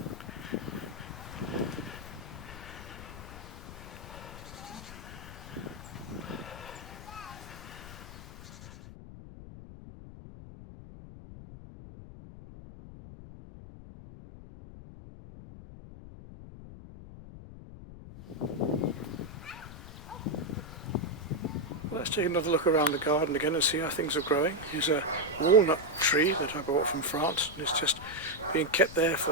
Let's take another look around the garden again and see how things are growing. Here's a walnut tree that I bought from France, and it's just being kept there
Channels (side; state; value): left; noise; rumble, 14 dB below the sound